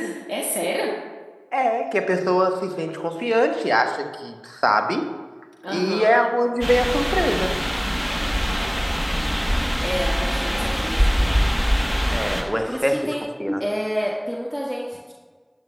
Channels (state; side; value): identical; both; correlation 1.00